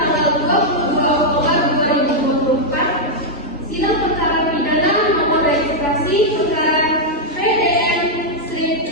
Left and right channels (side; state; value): both; normal; correlation -0.04